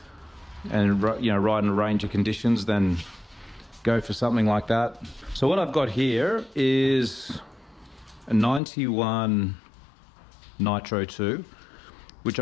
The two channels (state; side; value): drops out; right; at 8.6 s